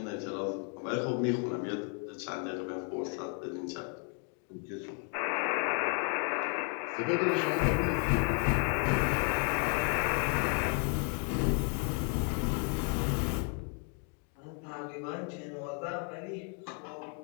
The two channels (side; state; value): right; quieter; 39.9 dB